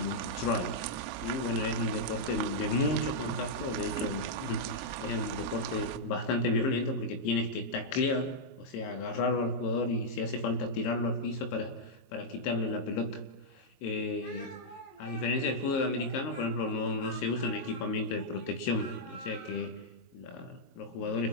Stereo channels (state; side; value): late; right; 21 ms